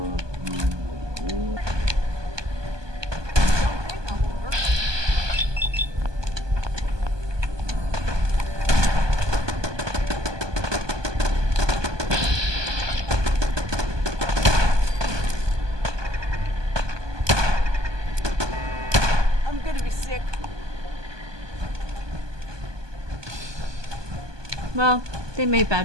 Well, they made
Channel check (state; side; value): late; left; 1.2 ms